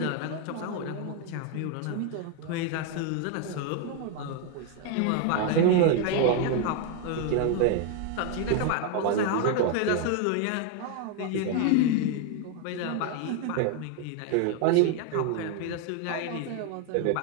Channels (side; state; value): both; different; correlation 0.01